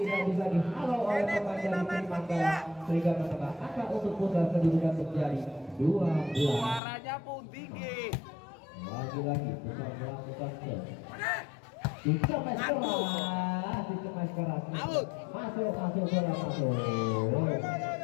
bisa dihalau oleh pemain dari Trimanggala sehingga menambah angka untuk Pusat kedudukan menjadi 12. Suaranya pun tinggi. Lagi-lagi Pusat melakukan serve. Dicemes keras. Masuk bola masuk.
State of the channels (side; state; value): right; drops out; at 6.8 s